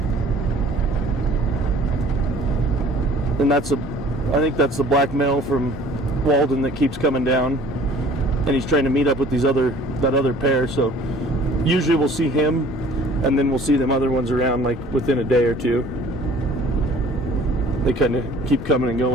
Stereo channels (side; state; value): both; normal; correlation 0.51